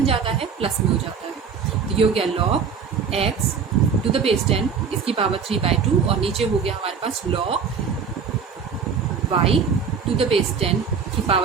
जाता है, प्लस में हो जाता है, तो ये हो गया log x to the base 10 इसकी पावर 3/2, और नीचे हो गया हमारे पास log y to the base 10 की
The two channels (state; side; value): quieter; left; 6.2 dB